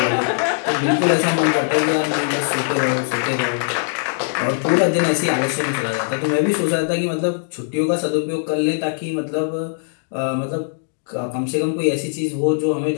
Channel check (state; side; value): silent; right; digital silence